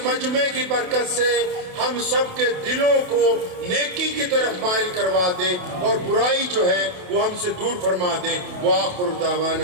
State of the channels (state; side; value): late; left; 28 ms